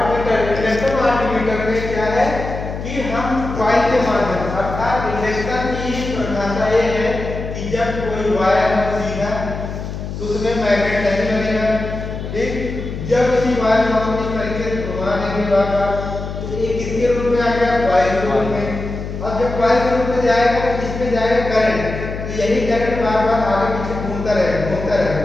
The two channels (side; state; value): left; noise; hum, 7 dB below the sound